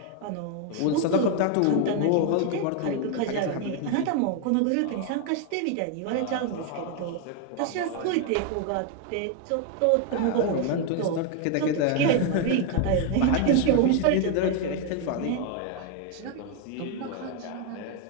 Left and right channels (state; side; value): different; both; correlation 0.01